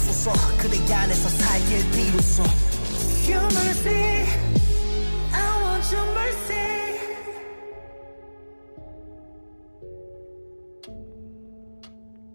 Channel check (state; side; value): inverted; both; correlation -1.00